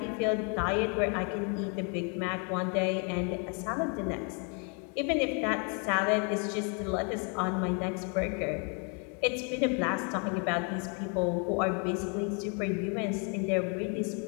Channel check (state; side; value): quieter; right; 37.5 dB